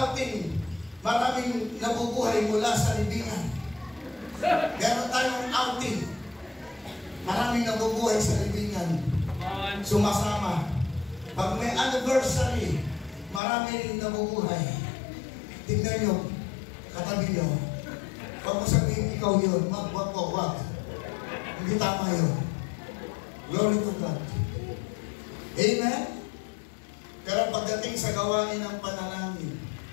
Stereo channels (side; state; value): right; drops out; at 13.4 s